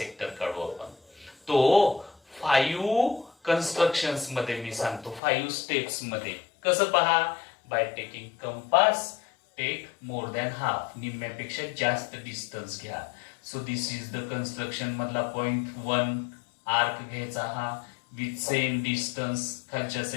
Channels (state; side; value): drops out; right; at 5.2 s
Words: काढू आपण. तो 5 कन्स्ट्रक्शन्स मध्ये मी सांगतो 5 स्टेप्स मध्ये. कसं पहा? By taking compass take more than half. निम्म्यापेक्षा जास्त डिस्टन्स घ्या. So this is the construction मधला पॉइंट 1 आर्क घ्यायचा हा विथ सेम डिस्टन्स खालच्या